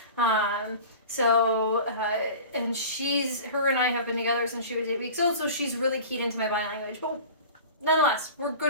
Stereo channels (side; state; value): both; inverted; correlation -0.37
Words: And her and I have been together since she was 8 weeks old, so she's really keyed into my body language. But nonetheless, we're